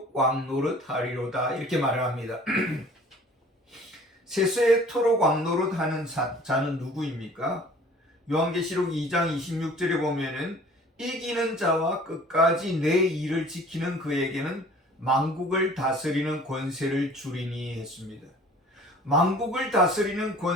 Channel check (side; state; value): both; normal; correlation 0.49